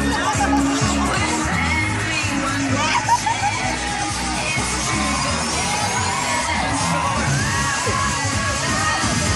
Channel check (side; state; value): both; identical; correlation 1.00